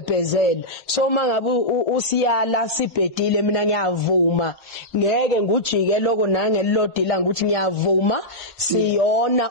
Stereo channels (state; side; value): normal; both; correlation -0.10